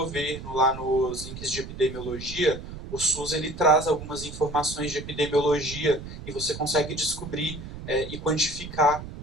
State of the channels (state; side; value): noise; right; rumble, 11 dB below the sound